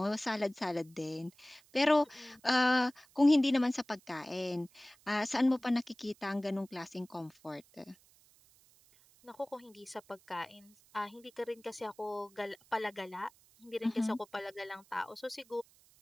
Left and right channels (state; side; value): noise; right; hiss, 29 dB below the sound